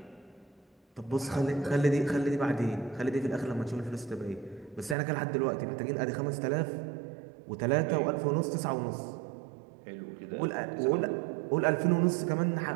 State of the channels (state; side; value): drops out; left; at 5.0 s